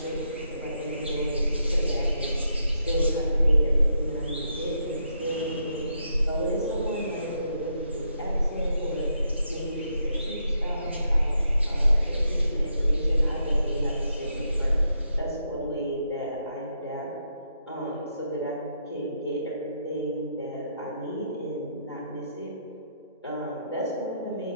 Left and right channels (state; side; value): inverted; both; correlation -0.79